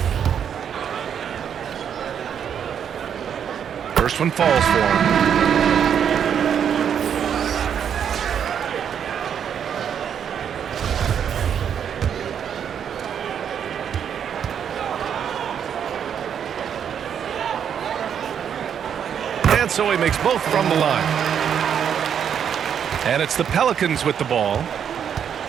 First one falls for him. And so he makes both from the line. And it's the Pelicans with the ball.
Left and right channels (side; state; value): left; quieter; 8.3 dB